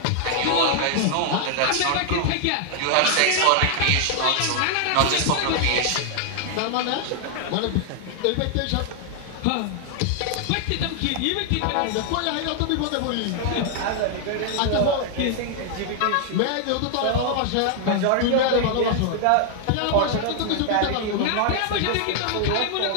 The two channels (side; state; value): both; different; correlation 0.00